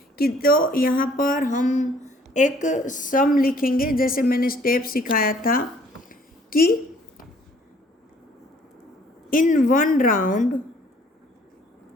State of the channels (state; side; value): normal; both; correlation 0.59